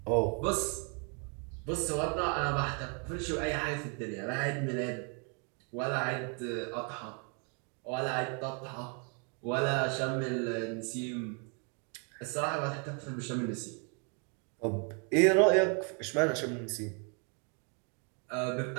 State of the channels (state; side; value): quieter; left; 37.8 dB